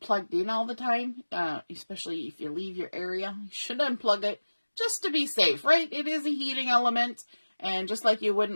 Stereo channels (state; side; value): inverted; both; correlation -1.00